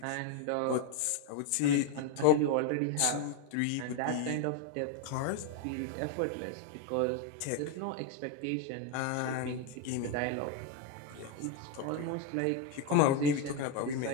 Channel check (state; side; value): different; both; correlation 0.02